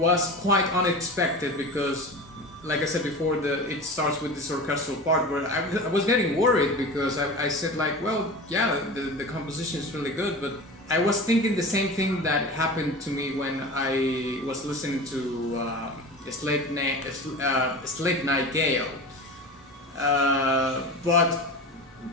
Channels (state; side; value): normal; both; correlation 0.32